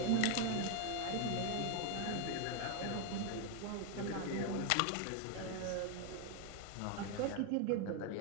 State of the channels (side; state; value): both; different; correlation 0.01